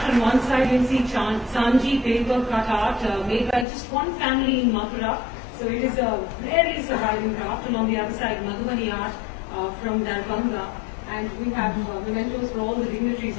On one side you see Sanji paper cut art made by just one family in Mathura. So it is a rarely surviving craft. And on the other side, Madhubani art from Darbhanga. And we have mementos for all the dignitaries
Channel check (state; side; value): drops out; right; at 3.7 s